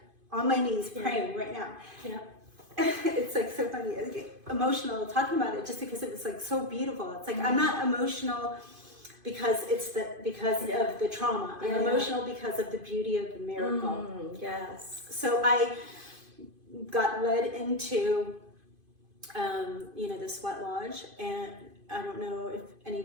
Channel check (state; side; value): late; left; 2.5 ms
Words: on my knees praying right now. Yeah. It's like so funny. I get emotional talking about it just because it was like so beautiful. It's like I'm not emotional because of the trauma. I'm emotional because of the beauty of the miracle. Yes. So I got led into the sweat lodge, and I don't know if